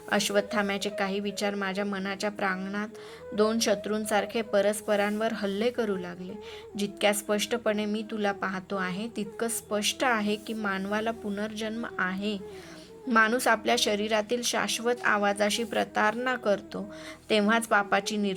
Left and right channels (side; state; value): both; identical; correlation 1.00